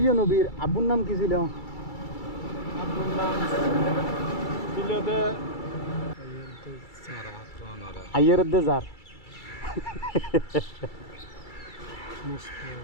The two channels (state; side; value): late; right; 2.3 ms